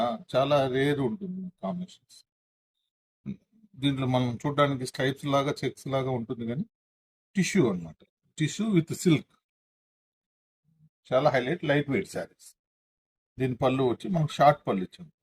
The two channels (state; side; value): identical; both; correlation 1.00